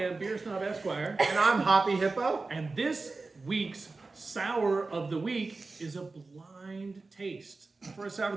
Beer Snob Esquire. And I'm Hoppy Hippo. And this week's Sour of the Week is a blind taste for a Sour of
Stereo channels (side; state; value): left; quieter; 3.7 dB